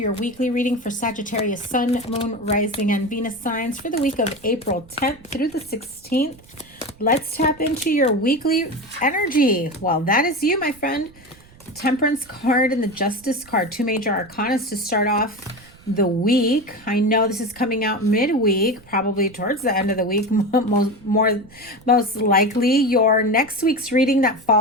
weekly reading for Sagittarius Sun, Moon, Rising, and Venus signs for the week of April 10th through the 16th. Let's tap into your weekly energy. Well, that is you, my friend. Temperance card and the Justice card, two major arcanas to start off the week. I know this is coming out midweek, probably towards the end of the week, most likely. Your next week's reading that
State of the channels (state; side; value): noise; right; rumble, 25 dB below the sound